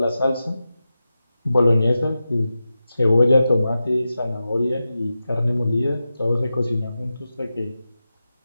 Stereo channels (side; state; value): both; inverted; correlation -0.92